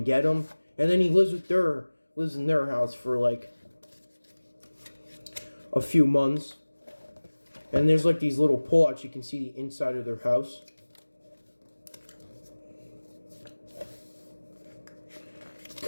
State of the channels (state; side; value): inverted; both; correlation -1.00